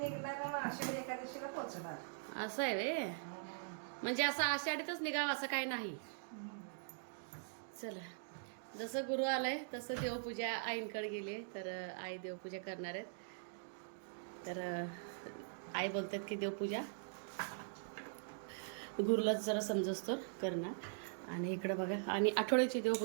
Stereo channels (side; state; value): left; silent; digital silence